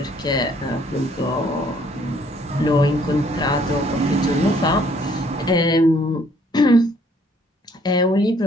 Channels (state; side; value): normal; both; correlation 0.63